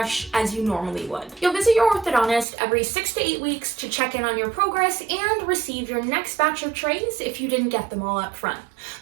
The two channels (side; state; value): left; drops out; at 2.5 s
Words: as you normally would. You'll visit your orthodontist every 6 to 8 weeks to check in on your progress and receive your next batch of trays if you didn't get them all up front.